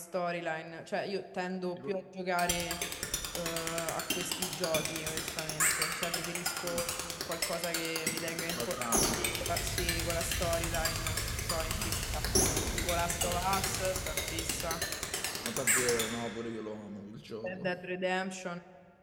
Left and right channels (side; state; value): both; identical; correlation 1.00